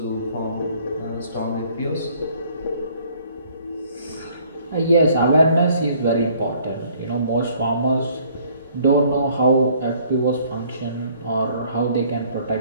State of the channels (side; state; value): both; inverted; correlation -0.60